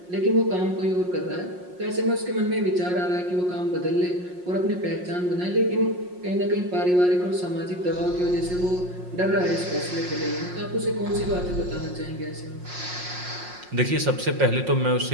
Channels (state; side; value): late; left; 5.6 ms